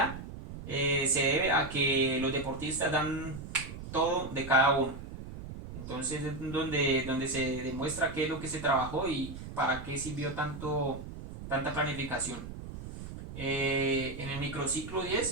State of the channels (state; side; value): noise; right; rumble, 10 dB below the sound